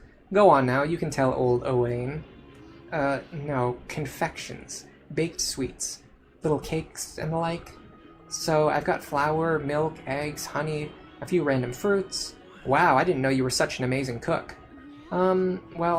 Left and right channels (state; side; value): identical; both; correlation 1.00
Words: Go on now, you can tell old Owain. No, confections. Baked sweets. Little cakes and the like. So, I've got flour, milk, eggs, honey, a few random fruits. Wow, I didn't know you were such an amazing cook. Well,